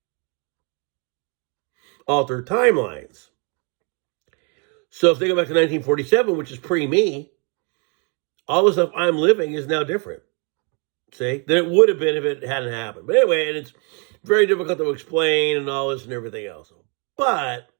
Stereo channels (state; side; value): quieter; left; 35.6 dB